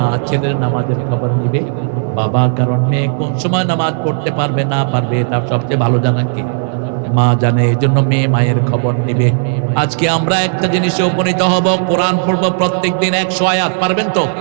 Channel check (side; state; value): left; silent; digital silence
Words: ছেলের নামাজের খবর নিবে বাবা। কারণ মেয়ে কোন সময় নামাজ পড়তে পারবে না পারবে, এটা সবচেয়ে ভালো জানা কে? মা জানে। এই জন্য মেয়ে মায়ের খবর নিবে। আজকে আমরা একটা জিনিসে উপনীত হব, কোরআন পড়বো প্রত্যেক দিন 100 আয়াত। পারবেন তো?